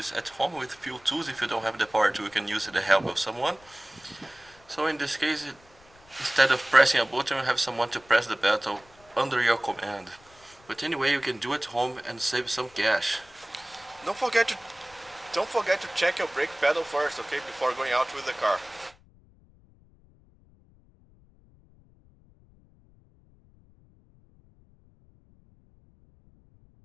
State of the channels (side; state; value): left; noise; rumble, 28 dB below the sound